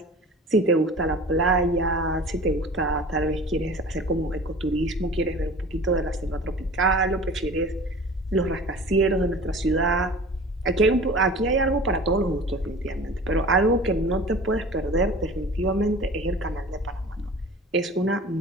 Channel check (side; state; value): both; normal; correlation 0.41